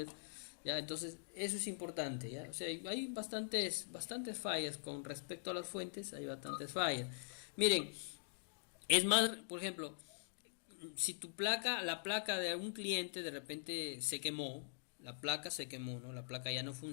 ¿ya? Entonces, eso es importante, ¿ya? O sea, hay bastantes fallas con respecto a las fuentes, hay bastantes fallas. Miren, es más, por ejemplo, si la placa de algún cliente de repente se quemó, la placa se quemó, ¿no? La placa ya no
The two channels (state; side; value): silent; right; digital silence